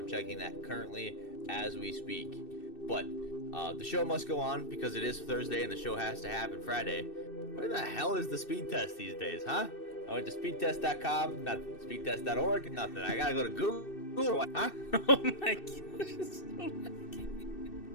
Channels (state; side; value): late; right; 2.6 ms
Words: checking that currently as we speak. But the show must go on because it is Thursday and the show has to happen Friday. Where the hell is the speed test these days, huh? I went to speedtest.com, nothing. Speedtest.org, nothing. I gotta go to Google, huh? Oh my gosh.